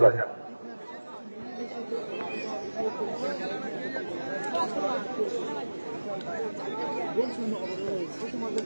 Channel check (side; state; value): both; inverted; correlation -1.00